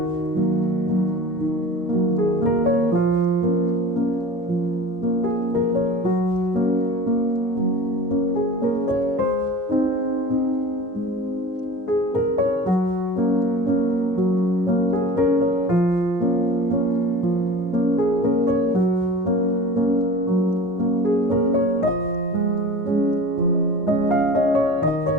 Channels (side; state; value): both; normal; correlation 0.38